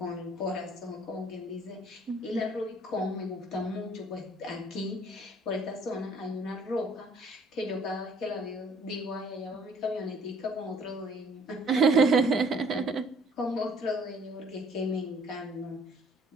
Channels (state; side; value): normal; both; correlation 0.58